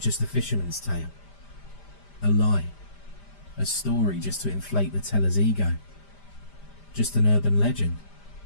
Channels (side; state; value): right; late; 5.0 ms